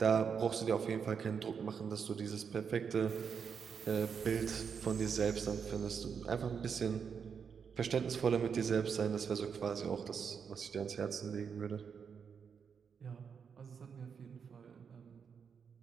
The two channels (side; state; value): left; quieter; 6.6 dB